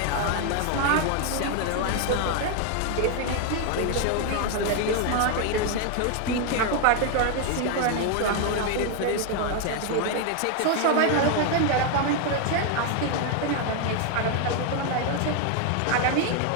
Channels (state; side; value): different; both; correlation 0.01